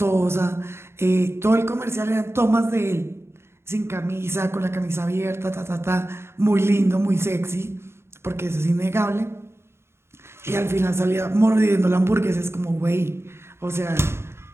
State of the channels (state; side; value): late; left; 0.12 ms